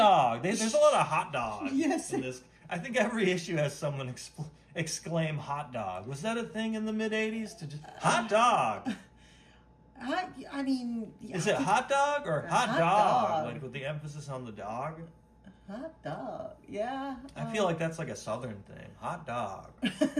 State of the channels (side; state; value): both; identical; correlation 1.00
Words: There's a lot of hot dogs Yes. in this. I think every issue has someone exclaim hot dog. Was that a thing in the mid-'80s? To just hot dog. I mean... Is it hot dog or hot Hot dog? dog. Like with the emphasis on the dog? Hot dog. Yeah. I feel like that's like a southern thing. Hot dog.